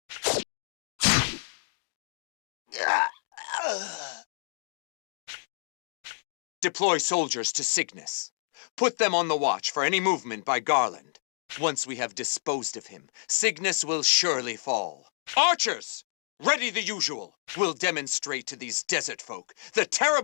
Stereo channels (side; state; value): right; silent; digital silence